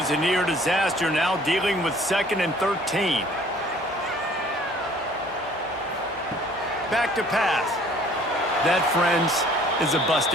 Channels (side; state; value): both; normal; correlation 0.55